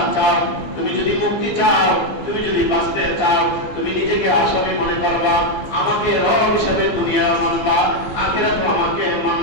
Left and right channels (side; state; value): right; late; 15 ms